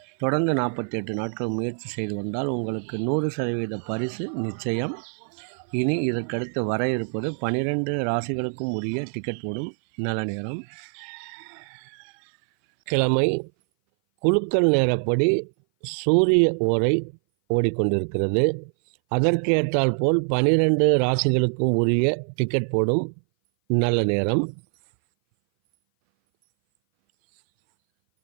தொடர்ந்து 48 நாட்கள் முயற்சி செய்து வந்தால் உங்களுக்கு 100% பரிசு நிச்சயம். இனி இதற்கடுத்து வர இருப்பது 12 ராசிகளுக்கும் உரிய டிக்கெட் போடும் நல்ல நேரம். கிழமை குலுக்கல் நேரப்படி சூரிய ஓரை ஓடிக்கொண்டிருக்கிறது. அதற்கேற்றால் போல் 12 ராசிகளுக்கும் உரிய டிக்கெட் போடும் நல்ல நேரம்.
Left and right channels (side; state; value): left; silent; 58 dB below the other